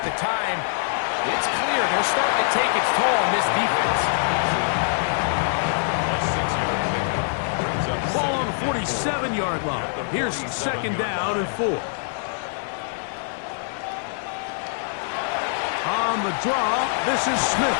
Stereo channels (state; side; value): silent; right; digital silence